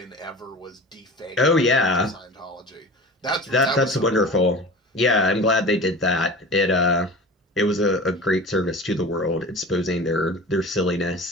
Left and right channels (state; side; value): normal; both; correlation 0.37